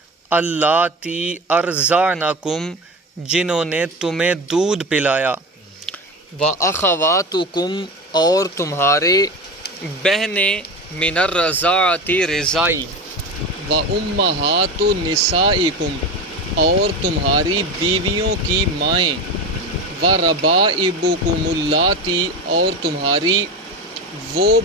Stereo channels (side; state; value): both; normal; correlation 0.25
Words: اللاتی ارضعنکم جنہوں نے تمہیں دودھ پلایا، و اخواتکم اور تمہارے بہنیں، من الرضاعۃ رضائی، و امہات نسائکم اور تمہاری بیویوں کی مائیں، و ربائبکم اللاتی اور تمہاری وہ